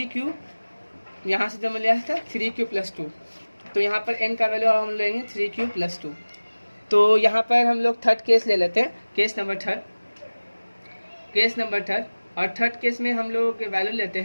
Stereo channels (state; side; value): inverted; both; correlation -1.00